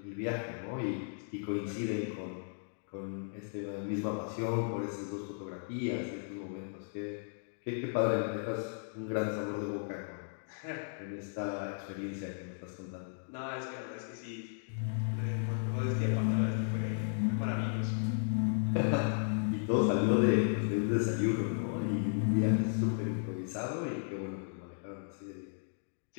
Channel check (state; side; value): silent; right; digital silence